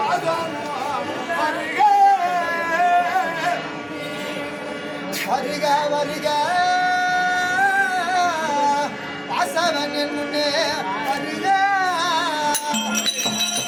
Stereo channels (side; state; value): both; identical; correlation 1.00